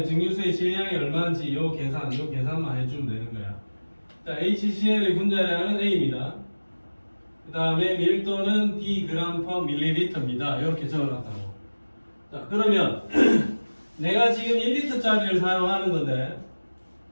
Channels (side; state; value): both; inverted; correlation -1.00